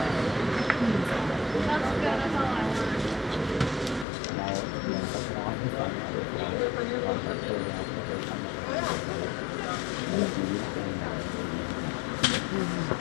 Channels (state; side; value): drops out; right; at 4.0 s